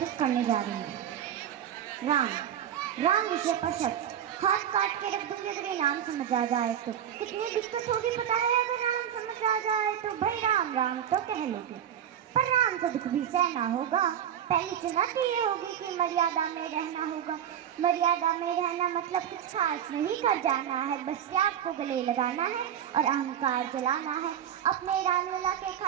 करने जा रही हूँ। राम। राम विषय पर शब्द हाथ काट के रख दूंगी अगर ये नाम समझ आ जाए तो। कितनी दिक्कत होगी पता है अगर राम समझ आ जाए तो। भाई राम राम तो कह लोगे पर राम से दुख भी सहना होगा। पहली चुनौती ये होगी कि मर्यादा में रहना होगा। मर्यादा में रहना मतलब कुछ खास नहीं कर जाना है, बस त्याग को गले लगाना है और अहंकार जलाना है। अपने रामलला के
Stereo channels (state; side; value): quieter; left; 9.8 dB